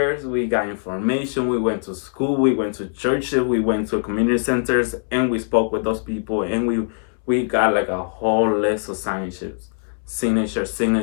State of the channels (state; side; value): silent; right; 64 dB below the other